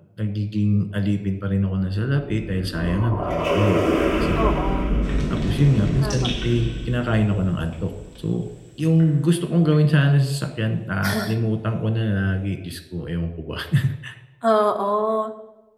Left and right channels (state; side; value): identical; both; correlation 1.00